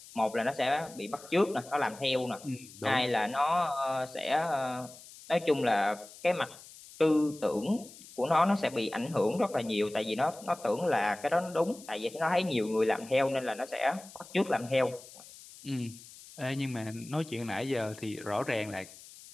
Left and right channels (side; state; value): left; noise; hiss, 19 dB below the sound